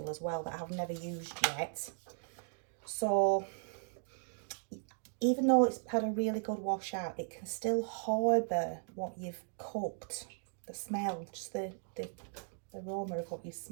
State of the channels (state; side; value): silent; left; 53 dB below the other